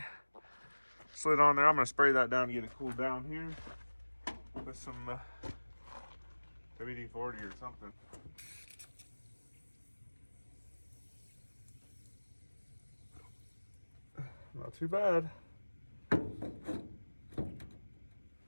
slid on there. I'm gonna spray that down and get it cooled down here with some WD-40 or something. Not too bad.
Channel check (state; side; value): inverted; both; correlation -1.00